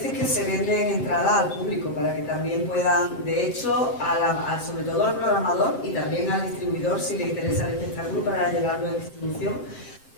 que se venden entradas al público para que también puedan, de hecho, sobre todo al programador y también al distribuidor, si le interesa el espectáculo para llevarlo en distribución,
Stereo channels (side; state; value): right; late; 7.6 ms